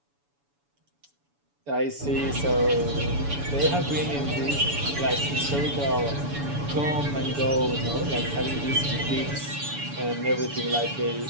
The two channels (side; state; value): left; late; 7.0 ms